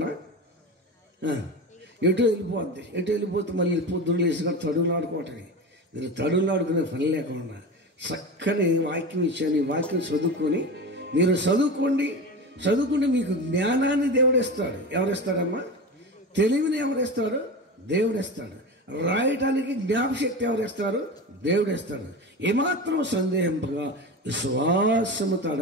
ఎటు వెళ్ళిపోతే మళ్ళీ పొద్దున్న లేసుకొని తడువులు ఆడుకోవటమే. మీరు తడువులు ఆడుకునే పని లేకుండా చక్కని వాక్యం ఇచ్చాను. ఈ వాక్యం చదువుకొని మీరు చదువుకుంటే మీకు జ్ఞానాన్ని దేవుడిస్తాడు. ఎవరిస్తాడమ్మా? తెలివిని ఎవరిస్తాడు? దేవుడిస్తాడు. రాయటానికి జ్ఞాపశక్తి ఎవరిస్తారు? దేవుడిస్తాడు. ఏమాత్రం సందేహింపగా విశ్వాసముతో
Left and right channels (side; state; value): both; normal; correlation 0.26